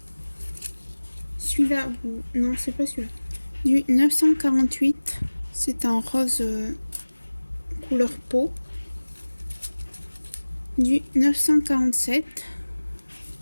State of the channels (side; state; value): both; inverted; correlation -1.00